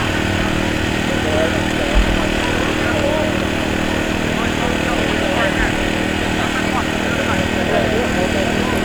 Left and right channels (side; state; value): right; noise; hiss, 26 dB below the sound